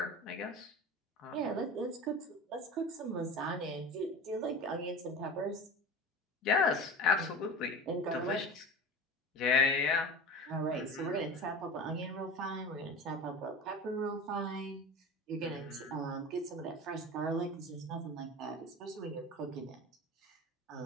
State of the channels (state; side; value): normal; both; correlation 0.33